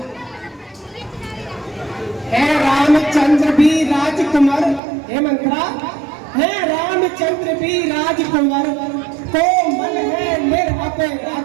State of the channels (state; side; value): drops out; left; at 4.8 s